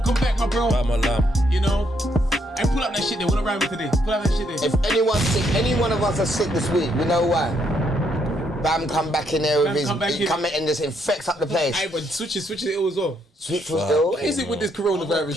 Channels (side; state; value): both; normal; correlation 0.73